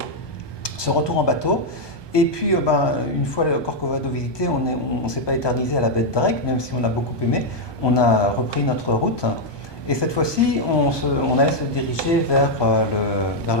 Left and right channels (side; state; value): right; late; 1.2 ms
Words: ce retour en bateau. Et puis, une fois le Corcovado visité, on ne s'est pas éternisé à la baie de Drake, même si on a beaucoup aimé. On a repris notre route. Et cette fois-ci, on allait se diriger vers